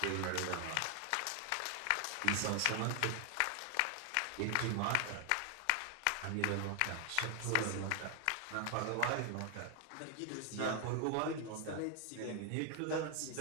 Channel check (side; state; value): both; different; correlation 0.00